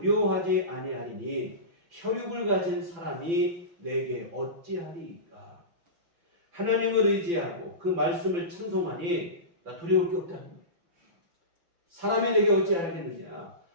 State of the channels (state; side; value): late; left; 5.9 ms